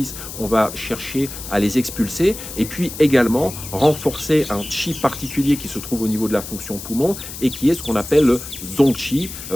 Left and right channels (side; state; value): left; noise; hiss, 11 dB below the sound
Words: on va chercher à les expulser et puis également renforcer un chi particulier qui se trouve au niveau de la fonction poumon et qui est ce qu'on appelle le zongqi,